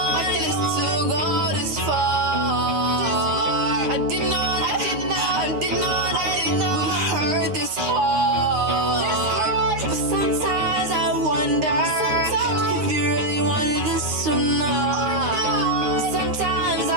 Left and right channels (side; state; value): left; late; 9.7 ms